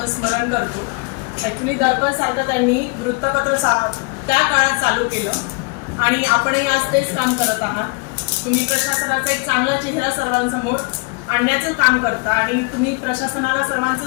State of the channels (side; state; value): right; quieter; 31.7 dB